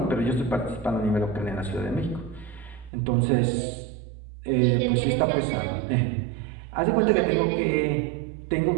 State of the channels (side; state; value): left; drops out; at 2.9 s